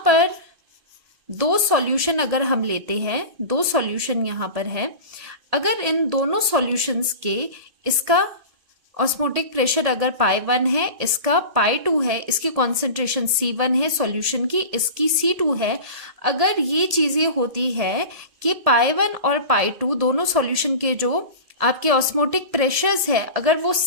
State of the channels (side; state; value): left; late; 1.8 ms